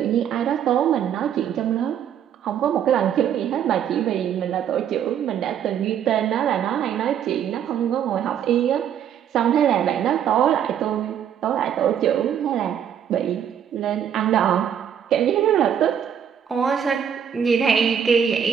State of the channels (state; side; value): quieter; left; 8.9 dB